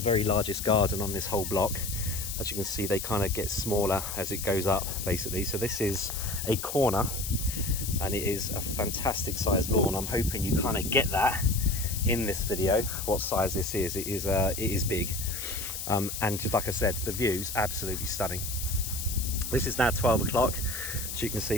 largest garden on this whole block. As you can see, they kind of get smaller as it goes up, basically. So this is a corner, and it is a fantastic sized lawn. I'm hoping you kind of get that in this video, what size this is. It is big. And just like I said, the view's absolutely stunning. This is now 12 o'clock. As you can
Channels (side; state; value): left; noise; hiss, 6 dB below the sound